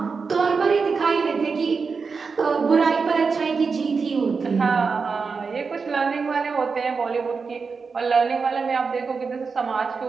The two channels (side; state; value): left; quieter; 5.0 dB